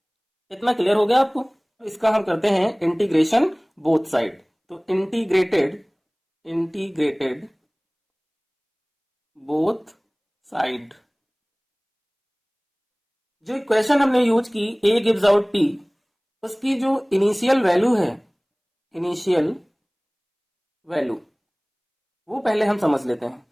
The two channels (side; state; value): both; identical; correlation 1.00